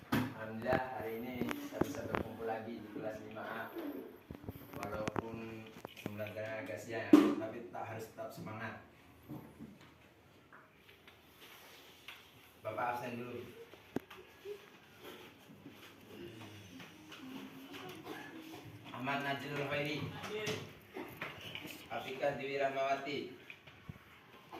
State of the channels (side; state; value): both; identical; correlation 1.00